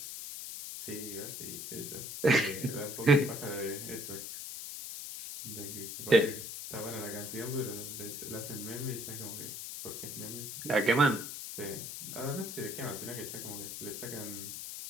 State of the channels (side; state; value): left; noise; hiss, 7 dB below the sound